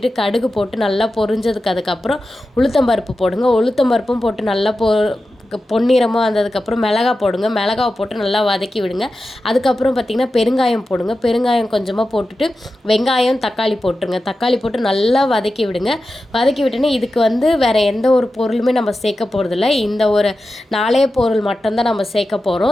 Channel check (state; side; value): normal; both; correlation 0.92